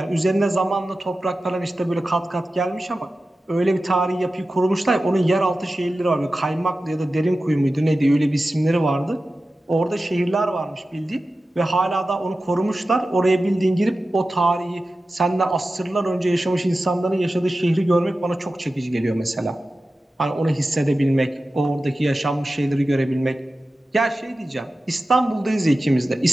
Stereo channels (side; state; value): both; normal; correlation 0.94